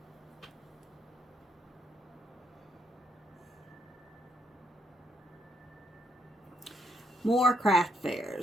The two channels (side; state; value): both; normal; correlation 0.75